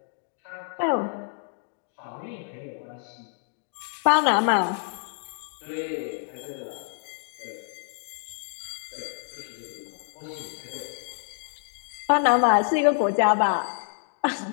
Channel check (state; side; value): silent; right; 60 dB below the other